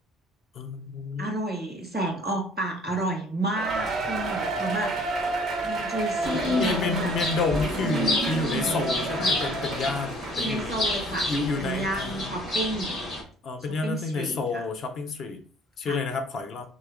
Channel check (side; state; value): both; normal; correlation 0.55